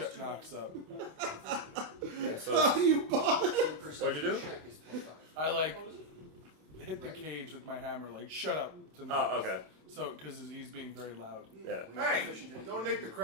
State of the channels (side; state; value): left; late; 27 ms